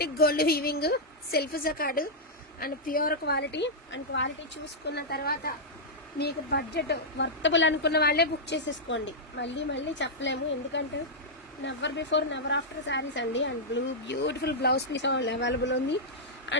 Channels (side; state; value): both; normal; correlation -0.07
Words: gold weaving, self jacquard and pure quality. And quality చూసుకున్న తర్వాత మీకు బడ్జెట్ వర్తబుల్ అనుకున్న వాళ్ళే బుక్ చేసేసుకోండి. మళ్ళీ మళ్ళీ చెప్పలేము, ఎందుకంటే never before never after saris అండి. And beautiful blouse piece available ఉంది.